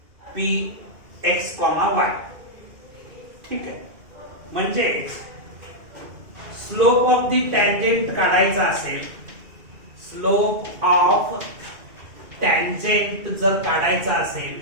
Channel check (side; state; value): left; late; 2.4 ms